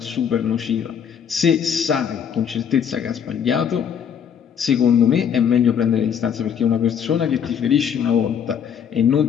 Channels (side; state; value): right; quieter; 8.0 dB